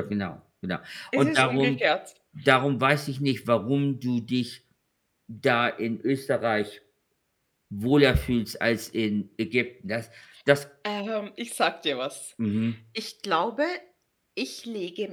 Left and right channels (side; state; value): both; identical; correlation 1.00